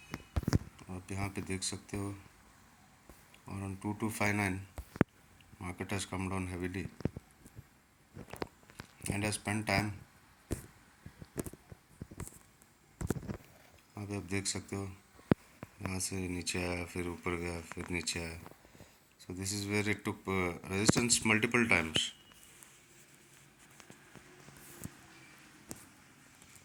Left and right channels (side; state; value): both; identical; correlation 1.00